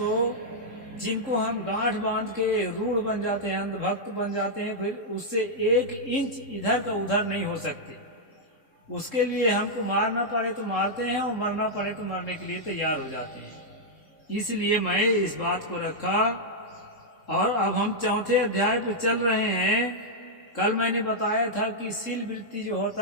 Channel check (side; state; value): right; late; 3.7 ms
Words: जिनको हम गांठ बांध के रूढ़ बन जाते हैं, अंधभक्त बन जाते हैं, फिर उससे 1 इंच इधर का उधर नहीं हो सकते। उसके लिए हमको मारना पड़े तो मारते हैं, और मरना पड़े तो मरने के लिए तैयार हो जाते हैं। इसलिए मैं इस बात को रखा। और अब हम 4थे अध्याय पे चल रहे हैं। कल मैंने बताया था कि सील वृत्ति जो